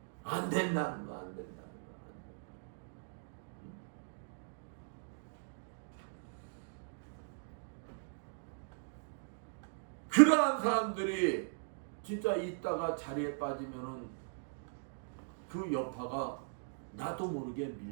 안 된다는 거 안 된다는 거. 그러한 사람들이 진짜 있다가 자리에 빠지면은 그 여파가 나도 모르게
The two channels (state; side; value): silent; left; digital silence